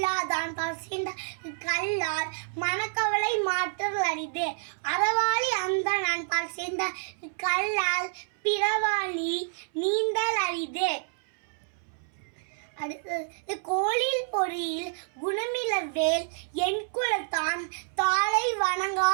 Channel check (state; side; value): silent; left; 59 dB below the other